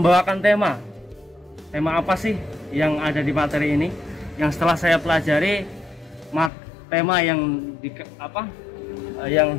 tema apa sih yang ada di materi ini, yang setelah saya pelajari tema yang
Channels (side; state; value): right; drops out; at 6.5 s